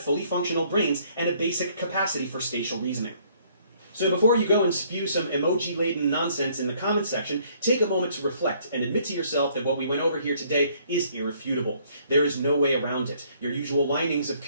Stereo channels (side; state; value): both; inverted; correlation -0.63